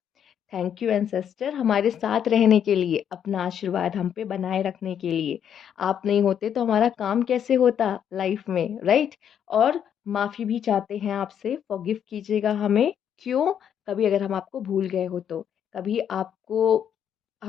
थैंक यू एंसेस्टर, हमारे साथ रहने के लिए, अपना आशीर्वाद हम पे बनाए रखने के लिए। आप नहीं होते तो हमारा काम कैसे होता लाइफ में, राइट। और माफ़ी भी चाहते हैं आपसे, फॉरगिव कीजिएगा हमें। क्यों? कभी अगर हम आपको भूल गए हो तो, कभी आपको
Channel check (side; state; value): right; quieter; 8.8 dB